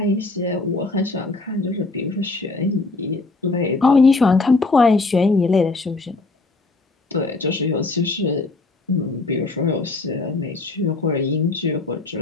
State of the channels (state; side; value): quieter; right; 3.4 dB